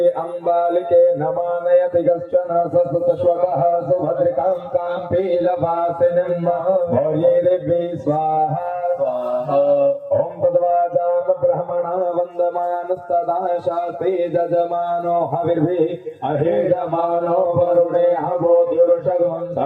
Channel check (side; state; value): both; identical; correlation 1.00